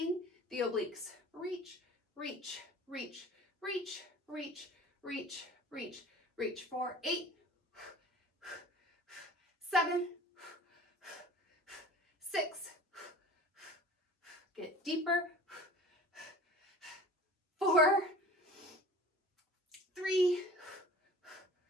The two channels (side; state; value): both; normal; correlation 0.43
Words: the obliques. Reach, reach, reach, reach, reach, reach, reach, reach. For 8, 7, 6, get deeper. 4, 3,